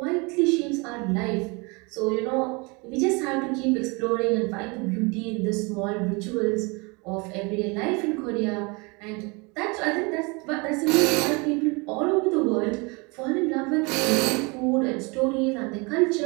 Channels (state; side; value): quieter; left; 28.9 dB